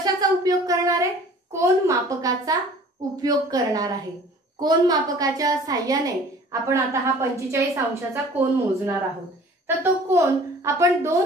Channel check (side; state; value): both; normal; correlation 0.49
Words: उपयोग करणार आहे, कोन मापकाचा उपयोग करणार आहे। कोन मापकाच्या साहाय्याने आपण आता हा 45 अंशाचा कोन मोजणार आहोत। तर तो कोन आपण